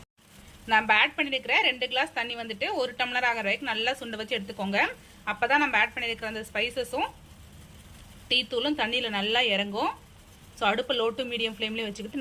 நம்ம ஆட் பண்ணியிருக்கிற 2 கிளாஸ் தண்ணி வந்துட்டு 1 டம்ளர் ஆகிற வரைக்கும் நல்லா சுண்ட வச்சு எடுத்துக்கோங்க. அப்போ தான் நம்ம ஆட் பண்ணியிருக்கிற அந்த ஸ்பைசஸும் டீ தூளும் தண்ணியில் நல்லா இறங்கும். ஸோ அடுப்பு லோ டு மீடியம் ஃப்ளேம்லேயே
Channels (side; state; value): both; identical; correlation 1.00